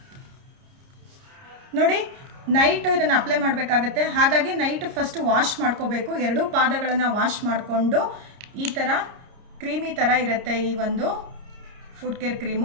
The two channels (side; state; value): left; late; 30 ms